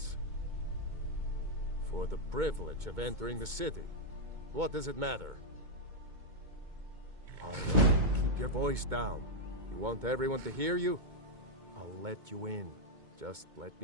For the privilege of entering the city. What does it matter? All right, keep your voice down. You want everyone to hear you? I'll let you in. Just let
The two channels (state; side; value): late; left; 2.2 ms